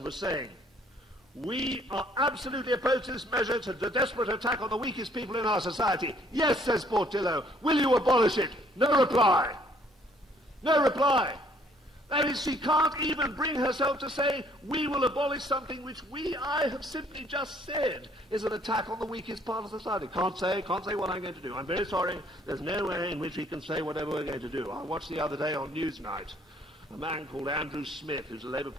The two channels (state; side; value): normal; both; correlation 0.62